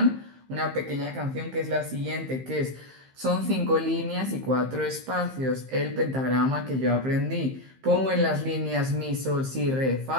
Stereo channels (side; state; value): left; late; 15 ms